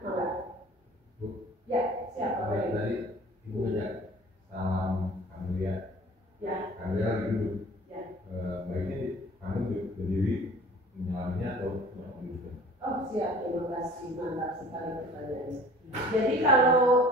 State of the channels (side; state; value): both; normal; correlation 0.47